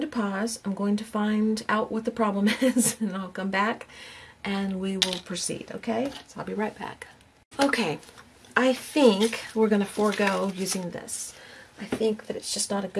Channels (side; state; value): both; identical; correlation 1.00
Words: to pause. I'm going to find out what the problem is, and I'll come back and we will proceed, okay? So I'll be right back. Okay, I think we're going to forego using this. I think that it's just not a